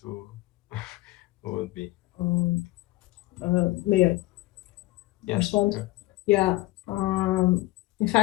will would be. May I respond? Sure. Yeah. In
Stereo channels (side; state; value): right; quieter; 19.1 dB